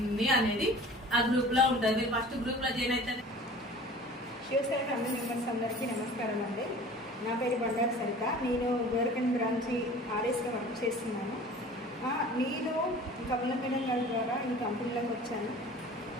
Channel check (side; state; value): both; normal; correlation 0.44